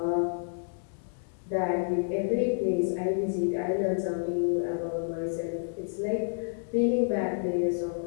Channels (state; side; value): silent; right; 58 dB below the other